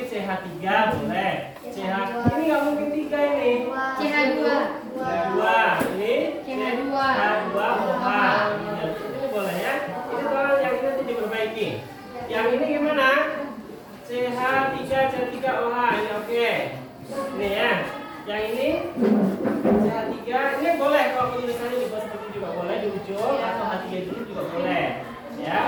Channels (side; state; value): both; identical; correlation 1.00